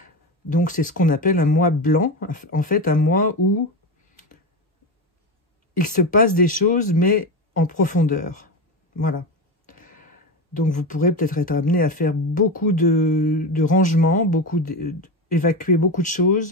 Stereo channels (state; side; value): normal; both; correlation 0.19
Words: Donc c'est ce qu'on appelle un mois blanc, en fait un mois où il se passe des choses, mais en profondeur. Voilà. Donc vous pourrez peut-être être amené à faire beaucoup de rangements, évacuer beaucoup de